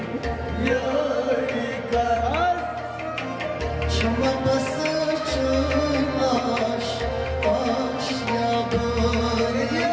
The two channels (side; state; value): both; identical; correlation 1.00